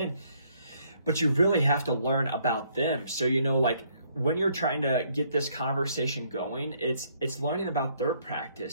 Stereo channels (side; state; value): both; inverted; correlation -0.68